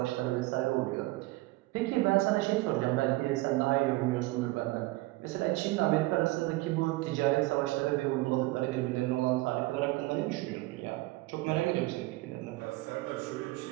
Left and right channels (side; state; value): left; quieter; 20.4 dB